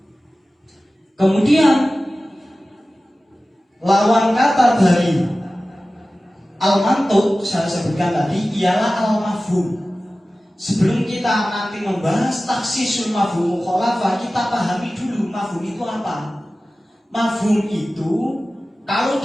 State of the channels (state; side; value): normal; both; correlation 0.96